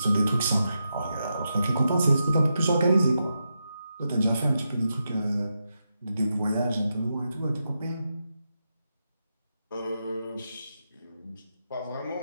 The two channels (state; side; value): inverted; both; correlation -0.86